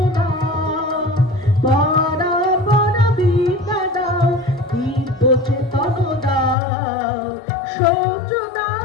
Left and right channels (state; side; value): drops out; right; at 6.6 s